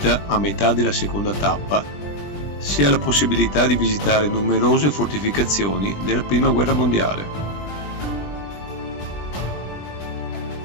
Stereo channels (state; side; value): late; right; 20 ms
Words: a metà della seconda tappa, si ha la possibilità di visitare numerose fortificazioni della Prima Guerra Mondiale.